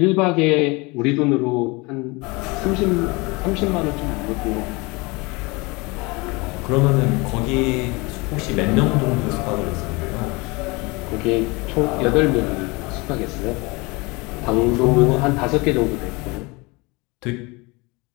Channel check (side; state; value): right; quieter; 25.8 dB